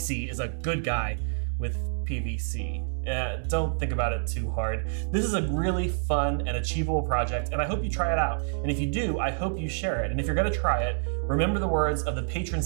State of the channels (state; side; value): silent; left; 60 dB below the other